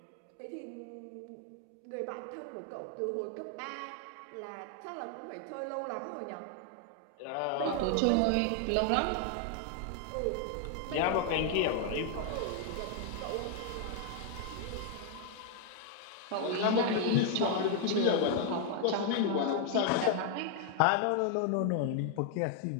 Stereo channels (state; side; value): different; both; correlation 0.00